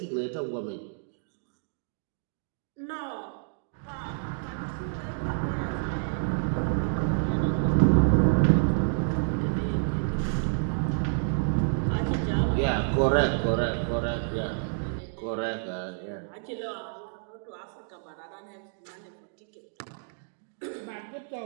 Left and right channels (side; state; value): left; silent; digital silence